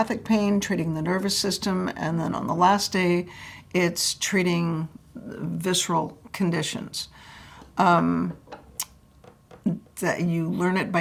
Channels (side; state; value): both; identical; correlation 1.00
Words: pain, treating the nervous system, and then on the last day, it's treating visceral conditions. That you learn it